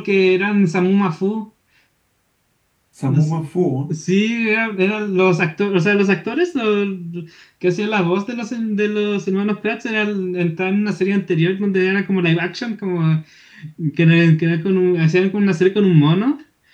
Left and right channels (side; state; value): both; identical; correlation 1.00